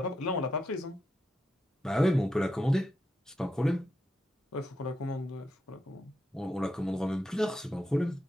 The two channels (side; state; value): both; normal; correlation 0.84